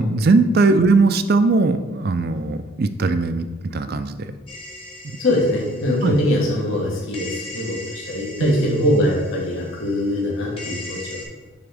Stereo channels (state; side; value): normal; both; correlation 0.58